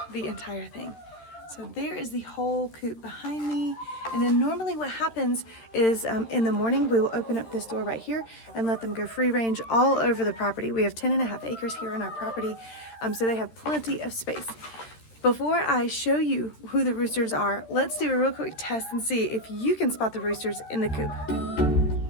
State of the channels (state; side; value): late; right; 13 ms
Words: the entire thing. So there is the whole coop behind me. And then normally what happens is in the morning, we will open up this door right here and let them go free range all over the property. We have 10.5 acres here on our property, so they have plenty of space. Before I show you who the roosters are, let's do a real quick test and see if you can spot the roosters in the coop.